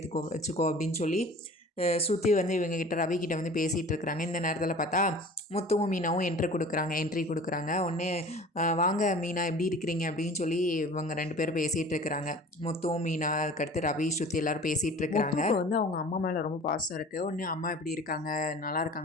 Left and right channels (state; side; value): normal; both; correlation 0.43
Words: வச்சுக்கோ அப்படின்னு சொல்லி ஸ்ருதி வந்து இவங்ககிட்ட ரவிக்கிட்ட வந்து பேசிகிட்டு இருக்கிறாங்க. இந்த நேரத்தில் பார்த்தா முத்துவும் மீனாவும் என்ட்ரி கொடுக்குறாங்க. உடனே வாங்க மீனா எப்படி இருக்கிறீங்க அப்படின்னு சொல்லி இவங்க 2 பேரும் பேசிகிட்டு இருக்கிறாங்க. முத்துவும் மீனா அதுக்கடுத்து ரவி ஸ்ருதி எல்லோரும் பேசிகிட்டு இருக்கிறாங்க. வந்து அவங்க அம்மா மேலே ரொம்ப பாசம் இருக்குது. உடனே அம்மா எப்படி இருக்காங்க, நல்லா